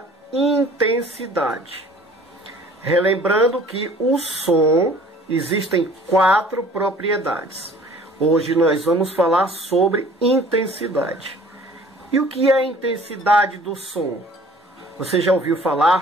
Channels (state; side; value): normal; both; correlation 0.51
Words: intensidade. Relembrando que o som existem 4 propriedades. Hoje nós vamos falar sobre intensidade. E o que é a intensidade do som? Você já ouviu